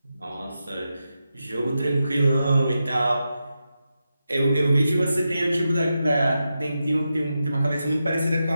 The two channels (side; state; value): both; inverted; correlation -0.89